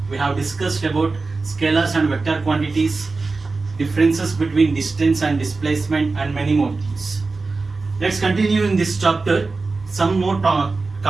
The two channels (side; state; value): left; quieter; 3.9 dB